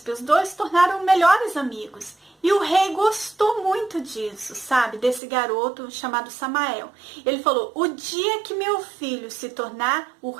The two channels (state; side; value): drops out; left; at 5.2 s